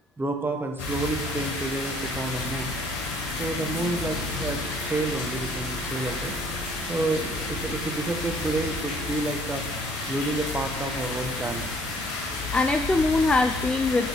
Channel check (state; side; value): normal; both; correlation 0.61